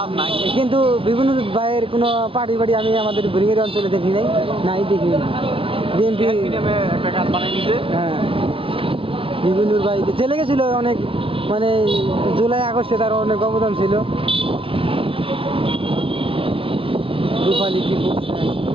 কিন্তু বিভিন্ন ভাইয়ের কোনো পার্টি বাড়ি আমি আমাদের ভুরিঙ্গের অঞ্চলে দেখি নাই দেখি বিএনপি হ্যাঁ বিভিন্ন ভাই জেলে গেছিল অনেক, মানে জুলাই আগস্টে তার অনেক অবদান ছিল। রূপালী কি করছেন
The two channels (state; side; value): late; left; 0.26 ms